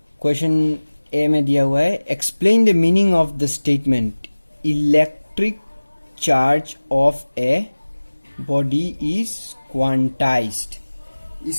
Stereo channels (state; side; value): inverted; both; correlation -1.00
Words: क्वेश्चन ए में दिया हुआ है, explain the meaning of the statement electric charge of a body is quantized.